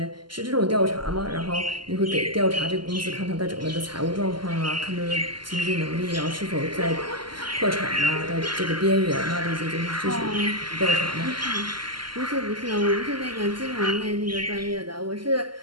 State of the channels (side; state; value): left; late; 0.72 ms